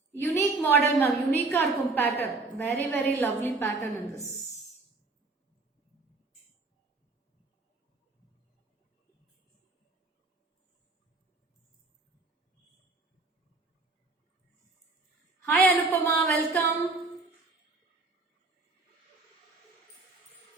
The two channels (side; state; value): left; quieter; 3.5 dB